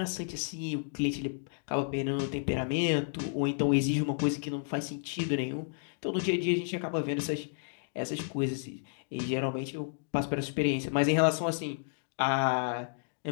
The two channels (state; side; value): silent; right; digital silence